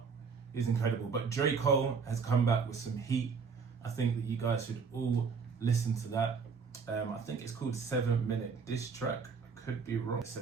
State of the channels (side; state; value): left; quieter; 5.5 dB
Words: It's incredible. But J. Cole has come back with some heat. I think that you guys should all listen to that. I think it's called 7 Minute Diss Track. I could be wrong.